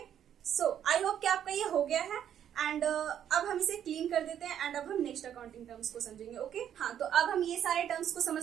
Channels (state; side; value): quieter; left; 9.8 dB